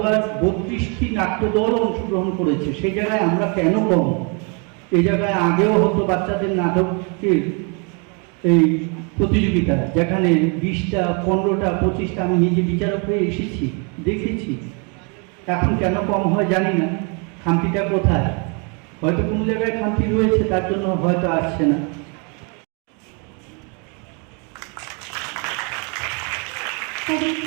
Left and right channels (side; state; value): left; quieter; 34.9 dB